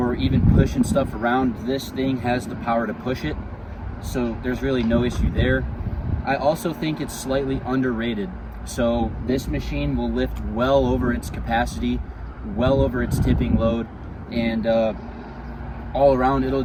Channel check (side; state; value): both; identical; correlation 1.00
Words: even pushing stuff around, this thing has the power to push it. So there's really no issue there. I also think it's slightly underrated. So this machine will lift well over its capacity, well over its tipping load, and all around it'll